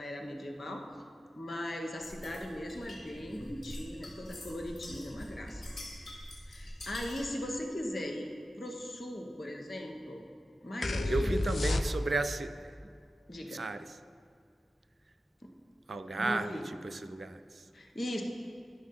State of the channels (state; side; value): normal; both; correlation 0.93